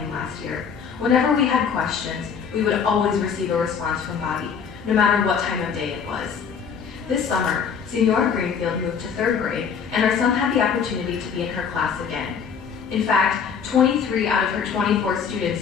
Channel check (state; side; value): quieter; right; 6.6 dB